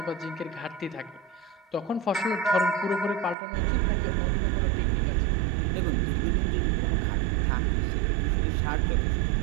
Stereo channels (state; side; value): drops out; left; at 3.4 s